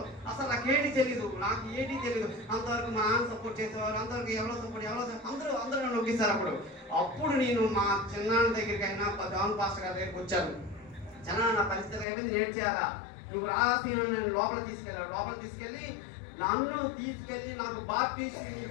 అసలు నాకేంటి తెలియదు, అంతవరకు మా నాన్న సపోర్ట్ చేసేవారు, అంతవరకు ఎవరో అందరూ నన్ను నొక్కిస్తారు. అప్పుడు నేను మా చిన్నాన్న దగ్గరికి అయినా జాన్ పాస్టర్ గారి దగ్గరికి వచ్చాను. చిన్న నా పరిస్థితి అయిపోయింది, నేను చేయాలా, నువ్వు రాసి నేను లోపల తీసుకెళ్ళి నాకు బాప్టిజం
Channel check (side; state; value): right; drops out; at 12.1 s